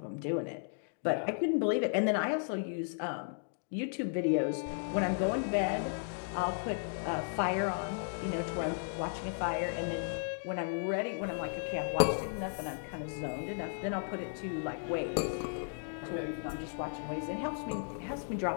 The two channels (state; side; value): silent; right; digital silence